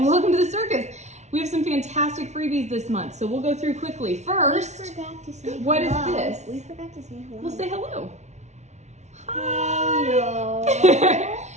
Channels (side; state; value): left; late; 0.32 ms